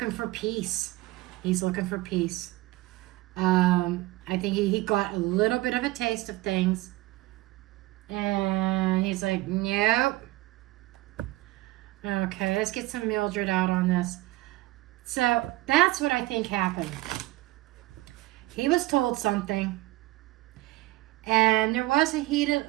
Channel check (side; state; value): left; quieter; 19.3 dB